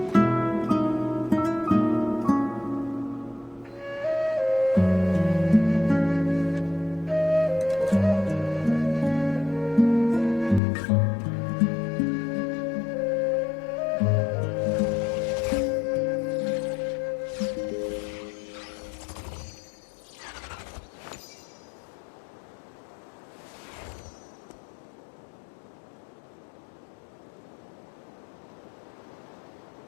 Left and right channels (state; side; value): drops out; right; at 10.6 s